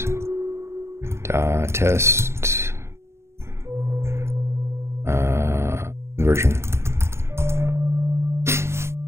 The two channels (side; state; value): left; late; 0.13 ms